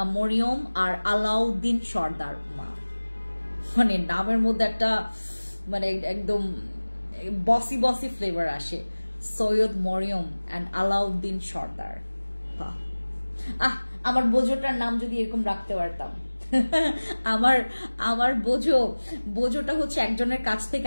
মরিয়ম আর আলাউদ্দিন সর্দার। মানে নামের মধ্যে একটা মানে একদম বসি বসি ফ্লেভার আসে, সৈয়দ মরিয়ম অ্যান্ড আলাউদ্দিন সর্দার। আমার বোঝোটার নাম যদি এরকম রাখতে পারতাম। আমার বোঝোটা হচ্ছে একজনের কাছ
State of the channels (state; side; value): inverted; both; correlation -1.00